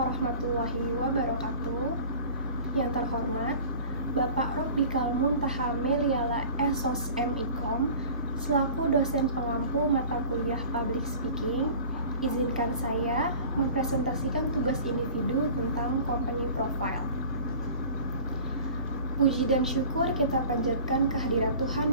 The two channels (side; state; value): both; inverted; correlation -0.42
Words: wabarakatuh. Yang terhormat, Bapak Robbikal Muntaha Meliala Esos MIkom, selaku dosen pengampu mata kuliah Public Speaking, izinkan saya mempresentasikan tugas individu tentang Company Profile. Puji dan syukur kita panjatkan kehadirat